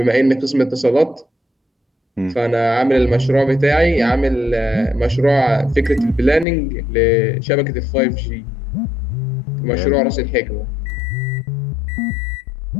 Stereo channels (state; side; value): drops out; right; at 6.5 s